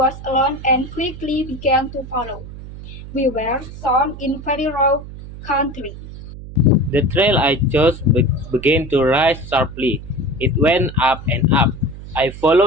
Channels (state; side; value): noise; right; hum, 13 dB below the sound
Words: alone and quickly began to follow. We were sown in very raw country. The trail I chose began to rise sharply. It went up and up. I